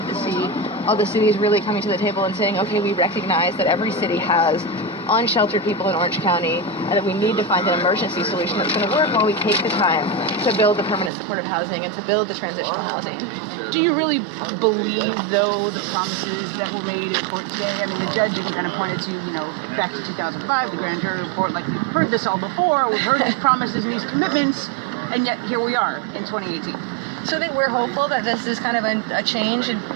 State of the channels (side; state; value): left; drops out; at 11.1 s